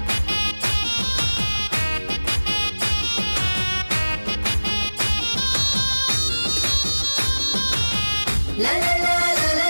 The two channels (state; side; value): inverted; both; correlation -1.00